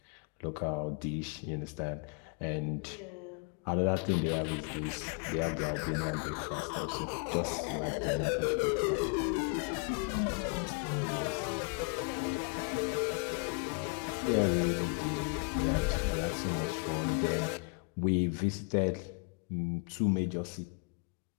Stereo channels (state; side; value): quieter; right; 35.3 dB